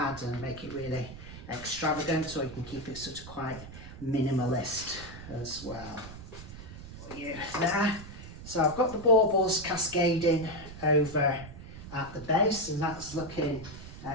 and make it really extravagant, or you can keep it sort of quite minimalist as well. There. So I've got the baubles cascading over at the base, and that's looking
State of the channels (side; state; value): right; noise; rumble, 13 dB below the sound